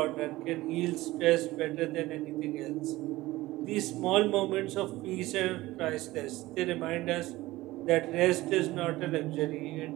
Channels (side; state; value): left; quieter; 18.2 dB